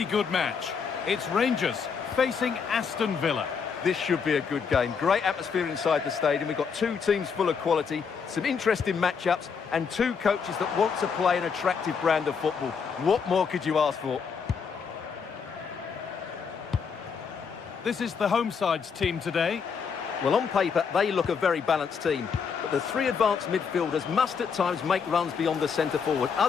good match. It's Rangers facing Aston Villa. This should be a good game. Great atmosphere inside the stadium. We've got two teams full of quality, some interesting matchups, and two coaches that want to play an attractive brand of football. What more could you ask for? This is the home side's team today. Well, on paper, they look a very balanced team. But the three advanced midfielders must at times make runs beyond the centre forward.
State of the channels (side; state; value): right; quieter; 6.1 dB